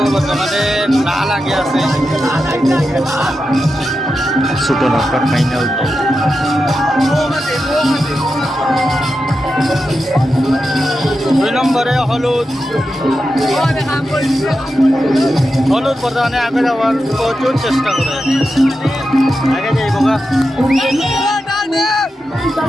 বর্তমানে না লাগে আছে ছোট নৌকার ফাইনাল। দুই নম্বরে হলুদ বর্তমানে আগে যাওয়ার প্রচুর চেষ্টা করে আগে যাই বোকা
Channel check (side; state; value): both; normal; correlation 0.89